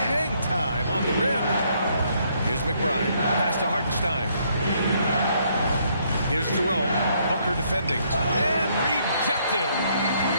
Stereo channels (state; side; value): inverted; both; correlation -0.70